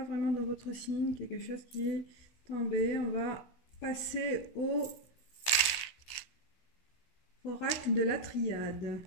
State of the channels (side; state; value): right; late; 16 ms